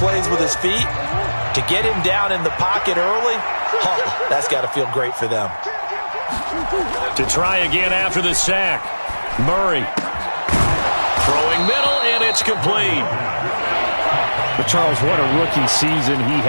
with his feet. To get him down in the pocket early, that's got to feel great for them. To try again after the sack. Murray throwing middle, and it's complete. But Charles, what a rookie season he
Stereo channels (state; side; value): inverted; both; correlation -1.00